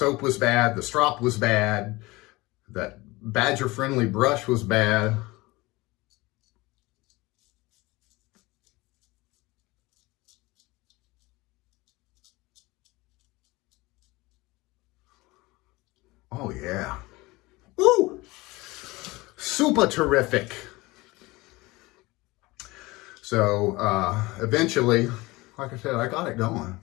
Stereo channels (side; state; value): right; quieter; 21.7 dB